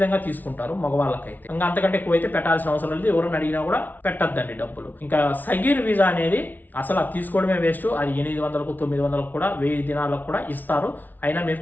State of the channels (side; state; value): right; late; 0.082 ms